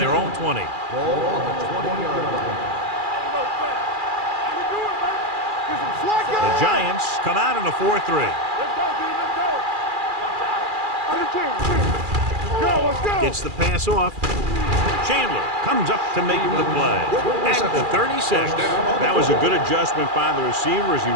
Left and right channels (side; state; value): left; late; 2.4 ms